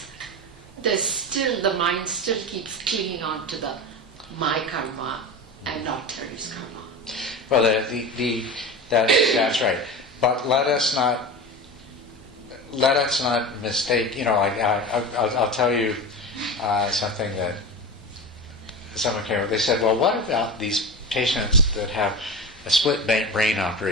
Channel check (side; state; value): both; normal; correlation 0.27